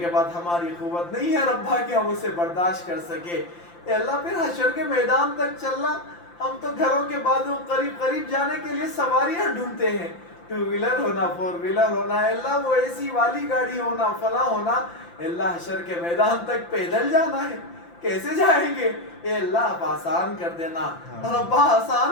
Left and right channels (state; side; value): late; right; 5.8 ms